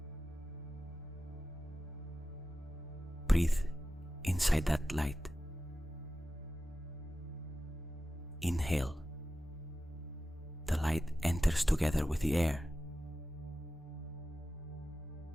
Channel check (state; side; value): normal; both; correlation 0.93